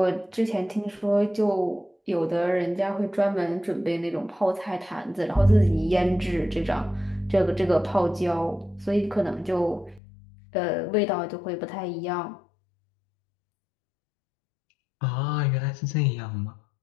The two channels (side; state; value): right; drops out; at 10.0 s